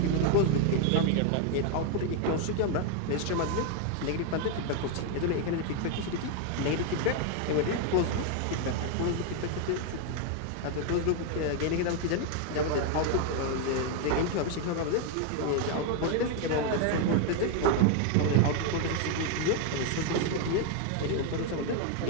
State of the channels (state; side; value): different; both; correlation 0.01